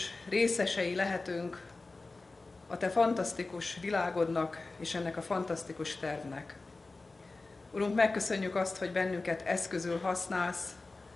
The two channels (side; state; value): right; quieter; 3.5 dB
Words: részesei lehetünk a te fantasztikus világodnak és ennek a fantasztikus tervnek. Urunk, megköszönjük azt, hogy bennünket eszközül használsz,